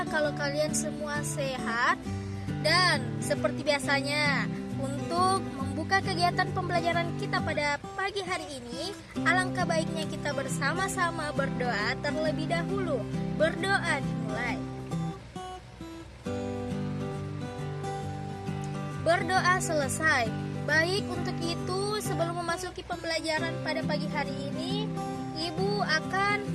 kalau kalian semua sehat. Dan seperti biasanya, untuk membuka kegiatan pembelajaran kita pada pagi hari ini, alangkah baiknya kita bersama-sama berdoa terlebih dahulu. Berdoa dimulai. Berdoa selesai. Baik, untuk itu sebelum memasuki pembelajaran pada pagi hari ini, Ibu akan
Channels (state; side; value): identical; both; correlation 1.00